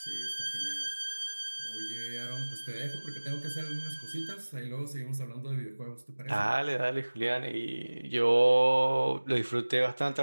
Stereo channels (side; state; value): both; inverted; correlation -1.00